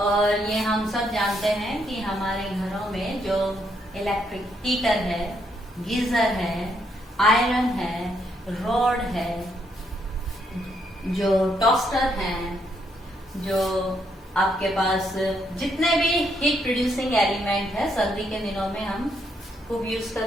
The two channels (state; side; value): normal; both; correlation 0.75